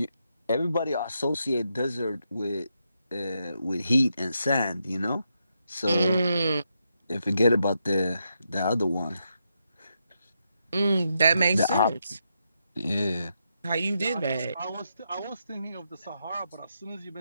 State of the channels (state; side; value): inverted; both; correlation -0.82